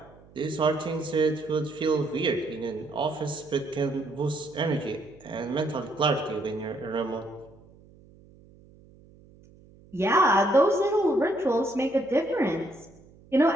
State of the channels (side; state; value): right; noise; hum, 25 dB below the sound